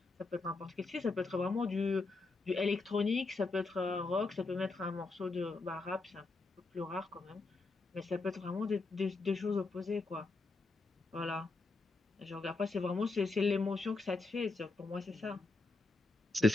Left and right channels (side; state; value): right; quieter; 3.6 dB